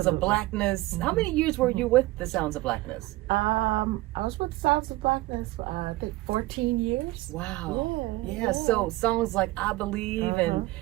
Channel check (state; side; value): quieter; left; 19.0 dB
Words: of Blackness. How many years were you with the Sounds of Blackness? I was with Sounds of Blackness for I think 14 years. Wow. Yeah. So songs like I Believe